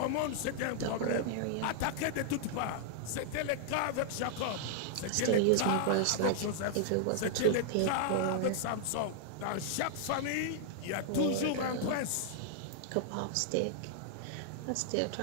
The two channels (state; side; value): different; both; correlation -0.01